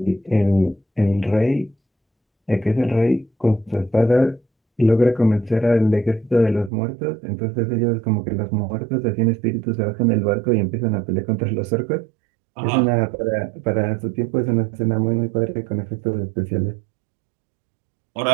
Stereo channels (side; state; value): left; drops out; at 6.7 s